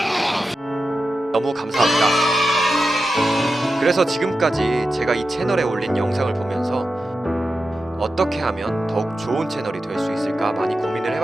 너무 감사합니다. 그래서 지금까지 제가 이 채널에 올린 영상을 보면서 어떻게 하면 더욱 좋은 채널이 될 수 있을까 많이 고민을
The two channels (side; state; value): both; normal; correlation 0.91